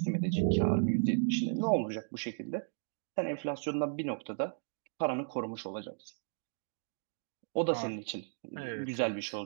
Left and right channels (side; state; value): left; silent; digital silence